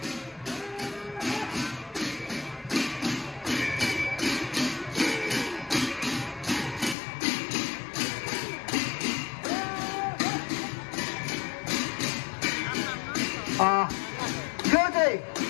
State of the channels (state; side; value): drops out; right; at 7.0 s